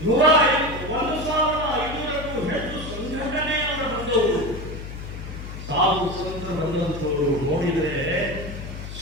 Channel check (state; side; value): noise; left; hum, 10 dB below the sound